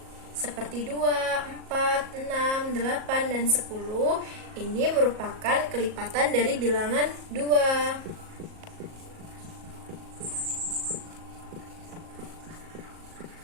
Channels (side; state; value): left; late; 37 ms